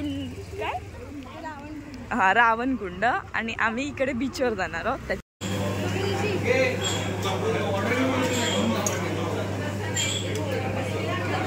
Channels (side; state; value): both; identical; correlation 1.00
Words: काय हां रावणकुंड. आणि आम्ही इकडे बीचवर जाणार आहोत.